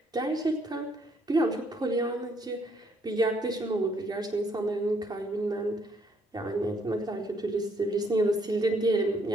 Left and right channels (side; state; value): both; normal; correlation 0.69